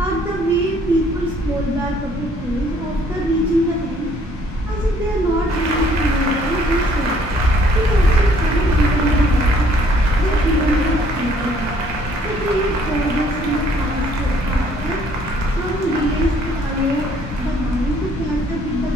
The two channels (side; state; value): both; normal; correlation 0.62